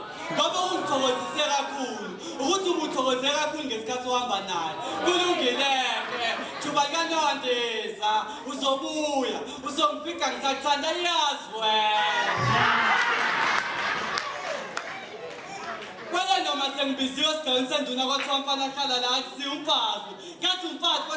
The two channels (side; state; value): both; identical; correlation 1.00